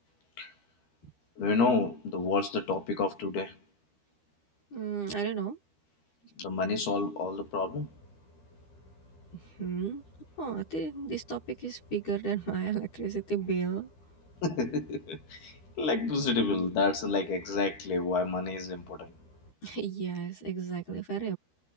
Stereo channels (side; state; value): right; late; 13 ms